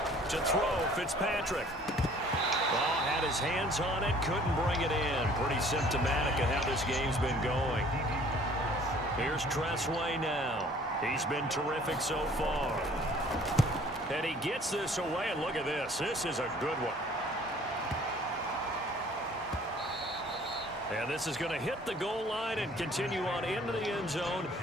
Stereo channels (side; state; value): both; normal; correlation 0.54